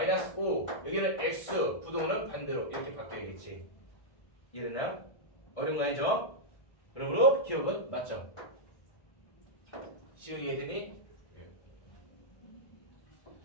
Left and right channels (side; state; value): right; late; 1.1 ms